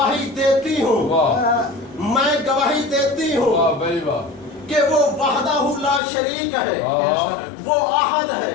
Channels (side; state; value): right; drops out; at 6.0 s